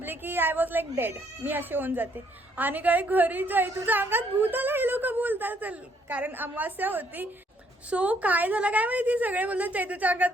की आय वॉज लाईक डेड, मी अशी होऊन जाते. आणि काय घरी जाई तुझ्या अंगात भूत आला हे लोक बोलतात, कारण अमावास्या होती. सो काय झालं काय माहिती, सगळे बोलतात चैतूच्या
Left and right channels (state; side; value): normal; both; correlation 0.68